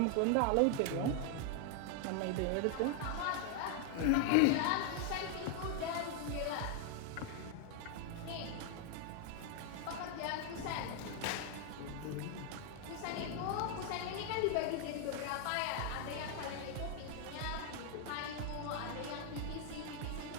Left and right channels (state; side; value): different; both; correlation 0.00